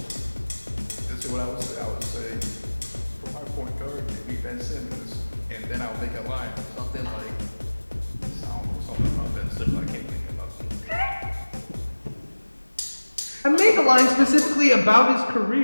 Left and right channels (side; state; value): both; inverted; correlation -1.00